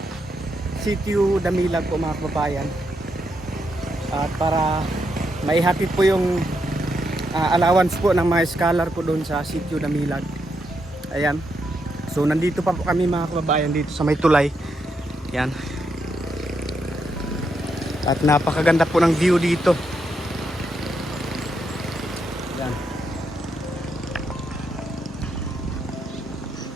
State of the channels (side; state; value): both; normal; correlation 0.81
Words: Sitio Damilag po mga kababayan. At para maihatid po yung allowance po ng mga scholar po doon sa Sitio Damilag. Ayan. So nandito pa po kami mga kababayan dito sa may tulay. Yan. At napakaganda po ng view dito. Yan.